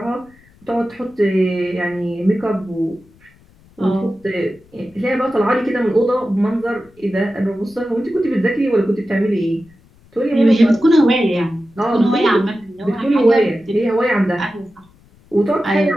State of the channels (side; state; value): left; noise; rumble, 29 dB below the sound